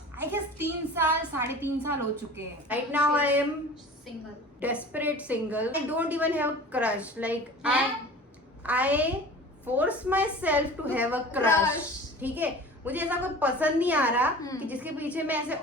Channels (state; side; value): normal; both; correlation 0.39